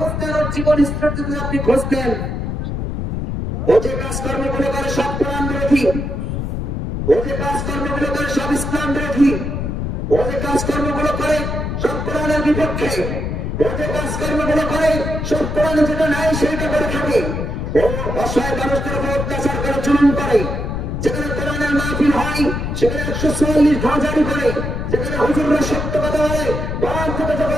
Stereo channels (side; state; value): left; noise; rumble, 3 dB below the sound